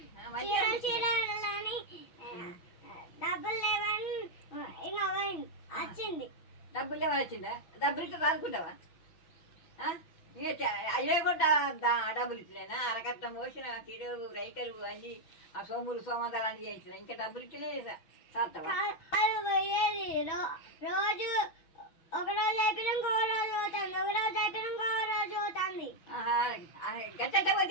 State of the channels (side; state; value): right; late; 6.0 ms